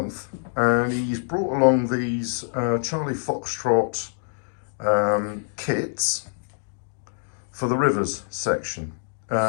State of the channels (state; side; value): silent; right; 62 dB below the other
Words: and he's brought along these Charlie Foxtrot kits for the rivers section.